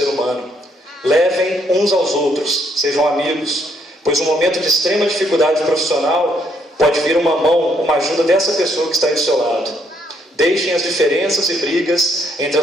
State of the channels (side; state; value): both; normal; correlation 0.71